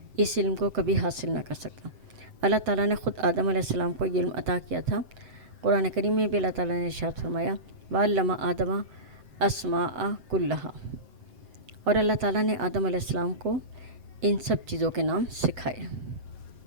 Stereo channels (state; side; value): late; left; 7.8 ms